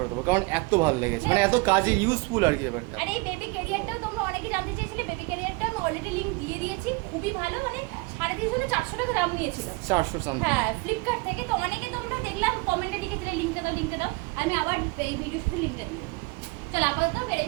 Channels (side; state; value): left; quieter; 26.5 dB